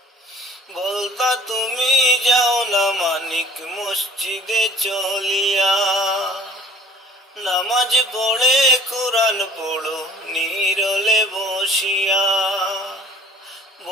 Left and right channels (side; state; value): both; normal; correlation 0.49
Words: বলতা তুমি যাও না মানিক মসজিদে চলিয়া, নামাজ পড়ে কোরআন পড়ো নীরলে বসিয়া।